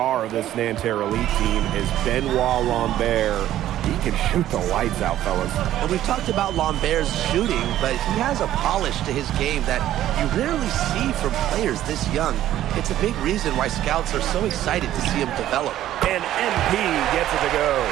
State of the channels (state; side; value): quieter; left; 12.8 dB